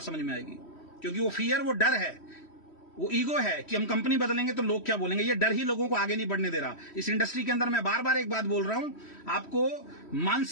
समझ में आएगी, क्योंकि वो फियर, वो डर है, वो ईगो है कि हम कंपनी बदलेंगे तो लोग क्या बोलेंगे। ये डर ही लोगों को आगे नहीं बढ़ने दे रहा। इस इंडस्ट्री के अंदर मैं बार बार एक बात बोल रहा हूं, आपको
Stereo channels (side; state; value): right; late; 3.1 ms